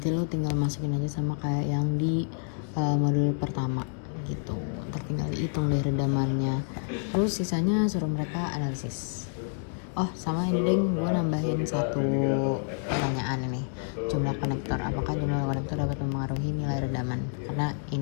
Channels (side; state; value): right; silent; 59 dB below the other